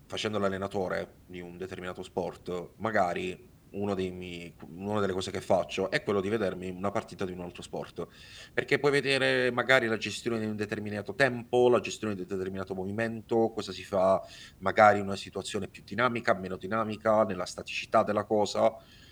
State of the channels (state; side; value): identical; both; correlation 1.00